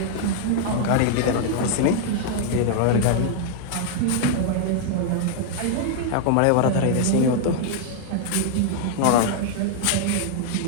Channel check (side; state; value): both; different; correlation 0.00